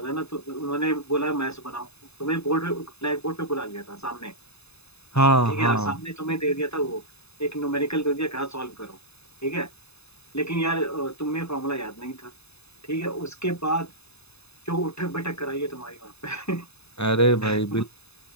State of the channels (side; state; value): right; late; 0.79 ms